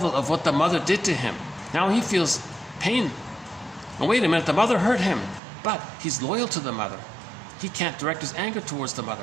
of what the mother did to him. Now he feels pain. Oh, wait a minute, the mother hurt him. But he's loyal to the mother. He can't direct his anger towards the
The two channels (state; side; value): drops out; left; at 5.4 s